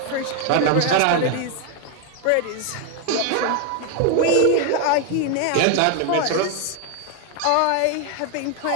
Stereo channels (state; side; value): different; both; correlation 0.01